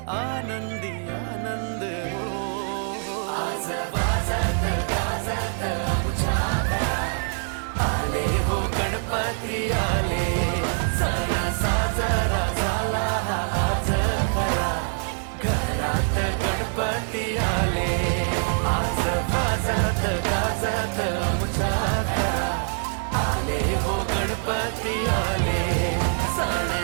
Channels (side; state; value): left; silent; 57 dB below the other